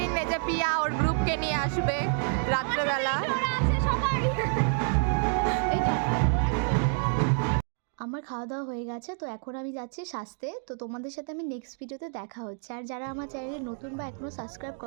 এই যে পিয়া ওর গ্রুপকে নিয়ে আসবে রাত্রেবেলা। আমার খাওয়া দাওয়া হয়ে গেছে, তো এখন আমি যাচ্ছি সাজতে। তো তোমাদের সাথে আমি নেক্সট ভিডিওতে দেখা হচ্ছে। আর যারা আমার চ্যানেলে নতুন বা এখনও সাবস্ক্রাইব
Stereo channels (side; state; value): left; silent; 59 dB below the other